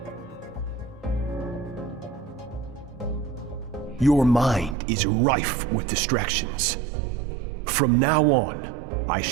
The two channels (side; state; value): left; drops out; at 4.8 s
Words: Your mind is rife with distractions. From now on, I